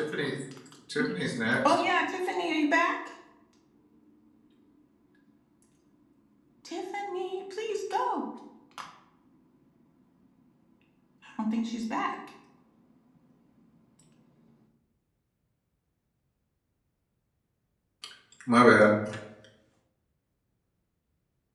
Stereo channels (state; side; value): identical; both; correlation 1.00